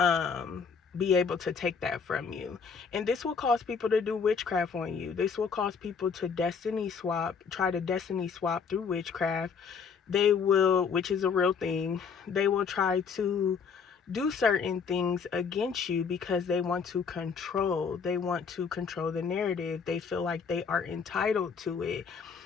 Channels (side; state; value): right; quieter; 5.9 dB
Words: be able to take that from you. And this will cause people to do witchcraft on you. This will cause people to try to destiny swap through witchcraft. They will, which is a real thing, they will try to do certain things against you because they want to control. They want to control the narrative. They feel like they are entitled to it.